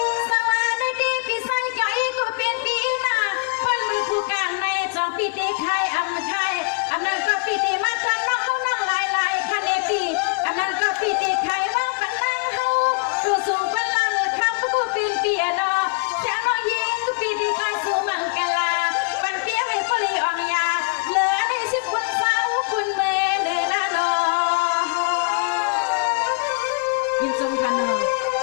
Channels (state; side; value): quieter; right; 36.0 dB